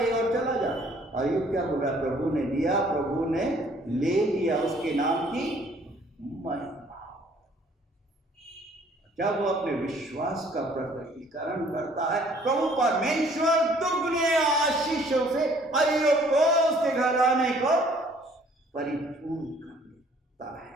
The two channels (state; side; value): normal; both; correlation 0.59